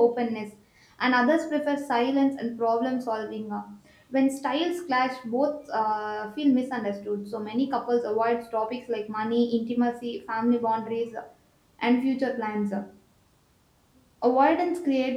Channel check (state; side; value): identical; both; correlation 1.00